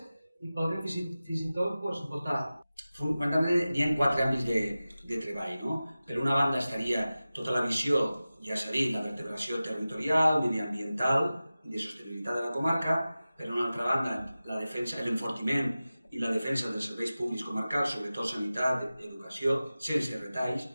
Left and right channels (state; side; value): inverted; both; correlation -0.96